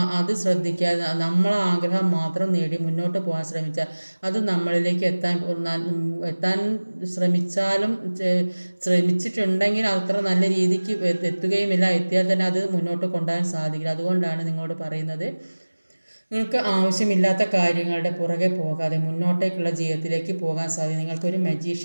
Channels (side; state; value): both; inverted; correlation -1.00